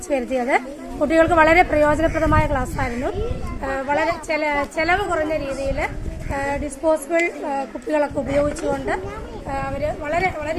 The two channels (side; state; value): both; identical; correlation 1.00